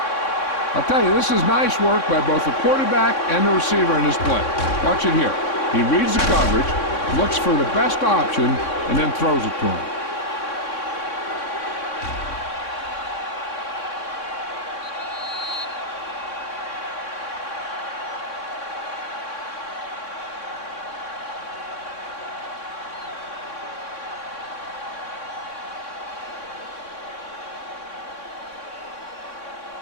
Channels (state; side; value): late; right; 3.6 ms